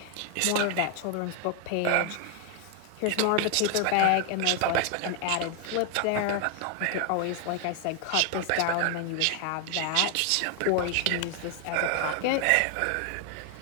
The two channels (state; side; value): different; both; correlation 0.00